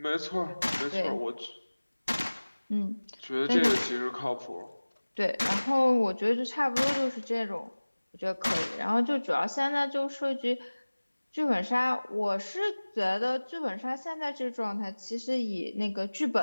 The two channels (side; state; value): both; inverted; correlation -1.00